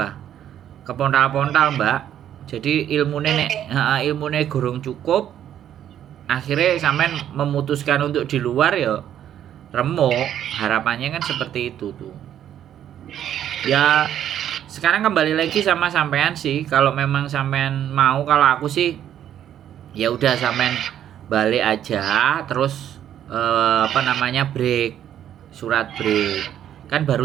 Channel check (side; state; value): left; quieter; 10.5 dB